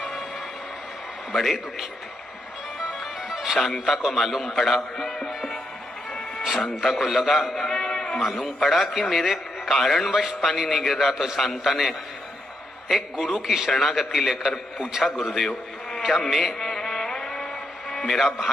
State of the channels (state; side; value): normal; both; correlation 0.80